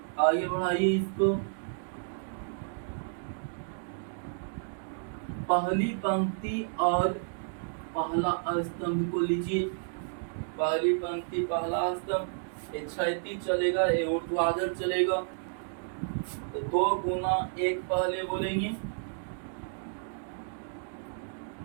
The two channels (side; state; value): left; silent; digital silence